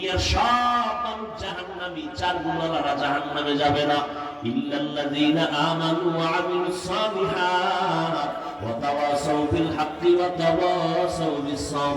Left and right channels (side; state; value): both; identical; correlation 1.00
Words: সব মানুষ জাহান্নামী। চার গুণওয়ালারা জাহান্নামে যাবে না। ইল্লাল্লাযীনা আমানু ওয়া আমিলুস সালিহাত ওয়া তাওয়াসাউ বিল হাক্কি ওয়া তাওয়াসাউ বিস